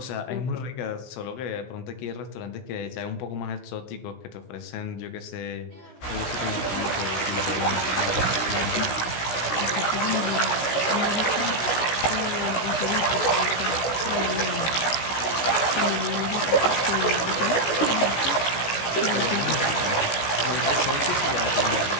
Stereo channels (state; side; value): late; right; 16 ms